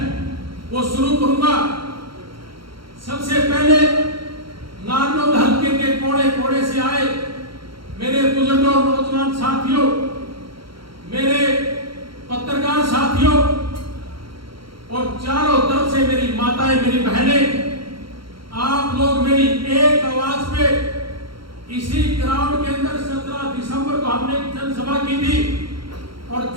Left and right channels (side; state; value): left; late; 0.73 ms